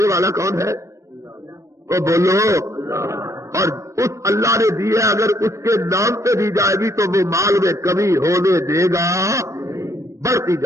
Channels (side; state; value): left; late; 0.15 ms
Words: والا کون ہے؟ تو بولو. اور اس اللہ نے دی ہے اگر اس کے نام پہ دی جائے گی تو وہ مال میں کمی ہونے دے گا بڑھتی